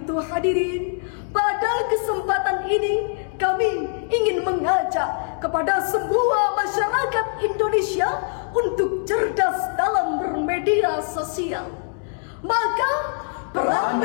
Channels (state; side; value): silent; right; digital silence